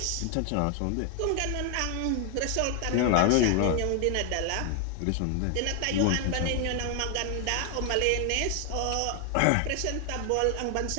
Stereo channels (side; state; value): both; different; correlation 0.00